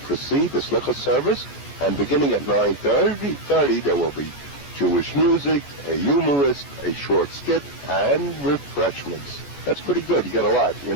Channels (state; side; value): late; right; 14 ms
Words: the Slichot service, and beginning at 9:30 there will be Jewish music, a humorist, a short skit, and refreshments. That's pretty good. You get a lot, you